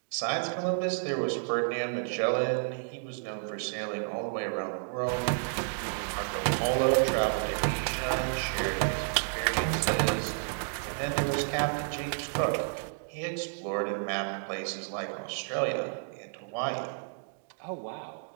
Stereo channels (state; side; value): silent; left; digital silence